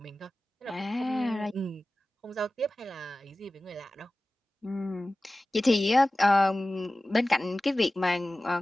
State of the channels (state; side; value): normal; both; correlation 0.96